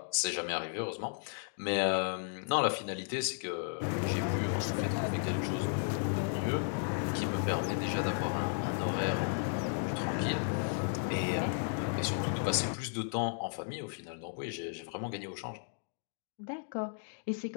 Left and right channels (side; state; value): right; silent; digital silence